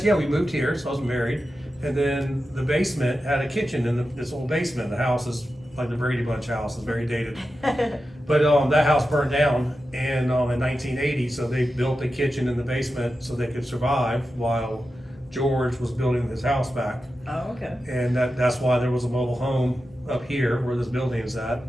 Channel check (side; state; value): both; normal; correlation 0.91